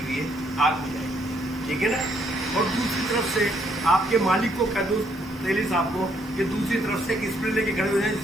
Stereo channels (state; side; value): normal; both; correlation 0.70